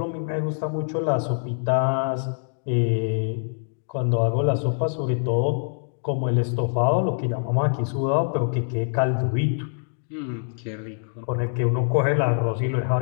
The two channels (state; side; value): silent; right; digital silence